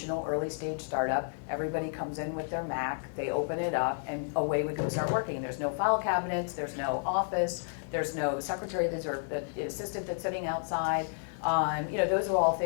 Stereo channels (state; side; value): silent; right; 57 dB below the other